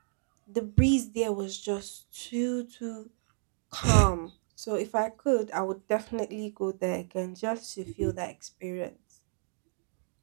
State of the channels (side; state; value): left; silent; digital silence